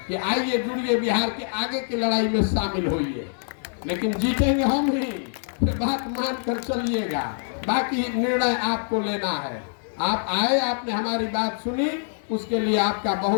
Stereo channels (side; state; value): right; silent; digital silence